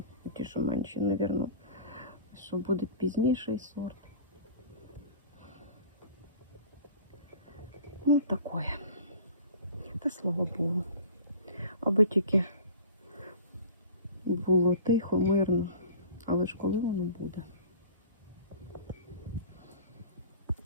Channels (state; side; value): inverted; both; correlation -0.42